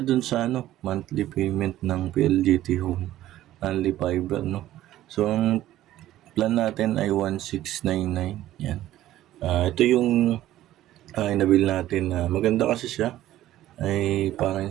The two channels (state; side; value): quieter; left; 14.0 dB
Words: dun sa monthly payment ng PLDT Home, only fiber, no? So ang plan natin ay 1699. Yan. Ito yung inabil natin na maganda kasi siya. Ay parang